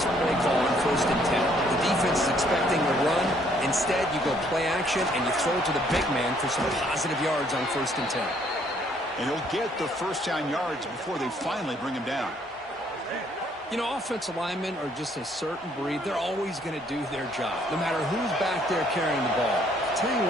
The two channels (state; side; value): normal; both; correlation 0.65